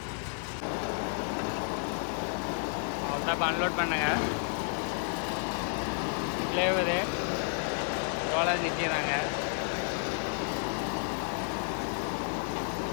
அவ்வளோதான். இப்போ அன்லோட் பண்ணுங்க. ஃப்ளேவரு ரோலர் நிற்கிறாங்க.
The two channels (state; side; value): silent; right; 57 dB below the other